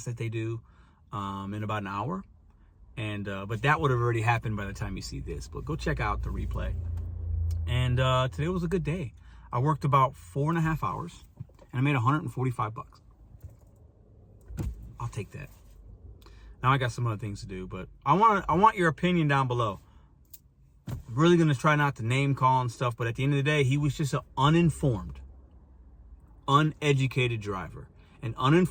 that they do in about an hour. And but that would have already happened by the time you see this. But go check out the replay. And today was a good day. I worked about 4.5 hours, and I made $145. I'll take that. Now I got some other things to do, but I want your opinion down below. I'm really gonna try not to name call and stuff, but at the end of the day, he was just an uninformed, uneducated driver. And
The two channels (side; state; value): both; identical; correlation 1.00